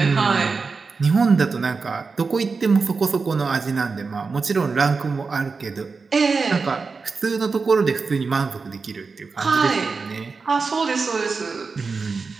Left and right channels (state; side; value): quieter; left; 4.6 dB